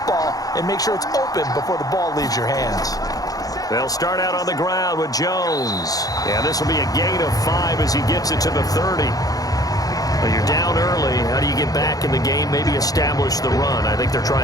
and make sure it's open before the ball leaves your hands. They'll start out on the ground with Jones. Yeah, this will be a gain of 5 as he gets it to the 30. Well, you're down early. How do you get back in the game? Maybe establish the run. I think they're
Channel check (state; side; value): late; right; 0.18 ms